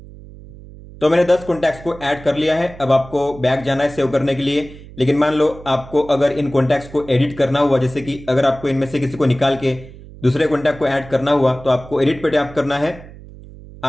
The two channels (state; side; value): noise; right; hum, 18 dB below the sound